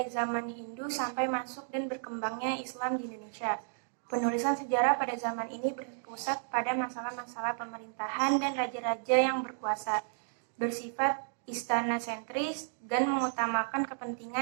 zaman Hindu sampai masuk dan berkembangnya Islam di Indonesia. Penulisan sejarah pada zaman ini berpusat pada masalah-masalah pemerintahan dan raja-raja yang berkuasa, bersifat istana sentris dan mengutamakan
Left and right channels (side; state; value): left; silent; digital silence